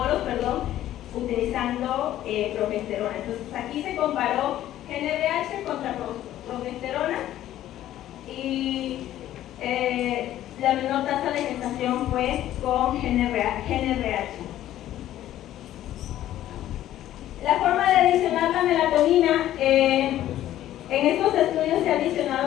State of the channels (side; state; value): right; quieter; 13.0 dB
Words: utilizando progesterona. Entonces aquí se comparó GnRH contra progesterona y la menor tasa de gestación fue con GnRH. La forma de adicionar la melatonina, en estos estudios se ha